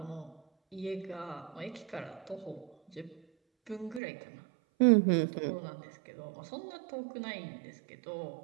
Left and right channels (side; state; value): left; drops out; at 4.0 s